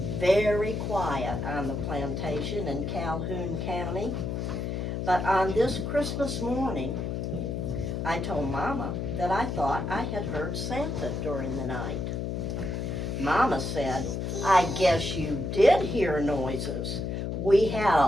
very quiet on the plantation in Calhoun County, but on this Christmas morning, I told Mama that I thought I had heard Santa during the night. Mama said, "I guess you did hear noises. We had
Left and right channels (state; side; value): noise; left; hum, 2 dB below the sound